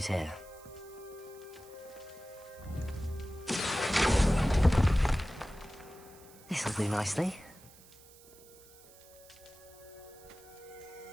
here. This'll do nicely.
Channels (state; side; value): noise; right; hiss, 23 dB below the sound